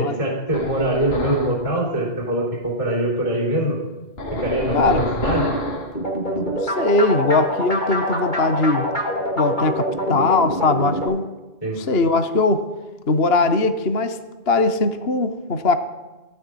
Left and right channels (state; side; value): late; right; 2.8 ms